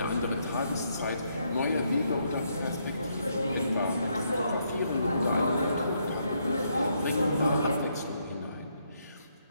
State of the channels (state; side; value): inverted; both; correlation -0.75